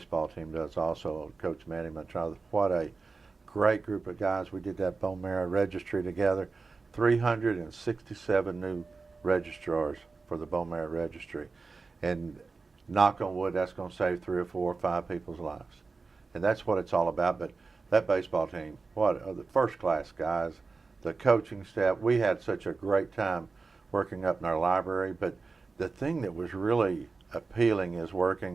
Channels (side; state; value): left; quieter; 4.2 dB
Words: team does also. Coach Manny Mantrada, what a great group of guys. We did that bone marrow registry together. 367 new registrars for the bone marrow registry. And knock on wood, that's going to save 3 or 4 or 5 people's lives. And that's what it's all about. But that baseball team, what are the first class guys, the coaching staff. We had such a great time working up in our library. But the thing that was really appealing is